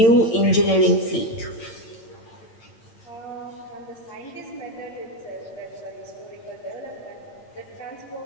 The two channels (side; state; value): right; late; 8.8 ms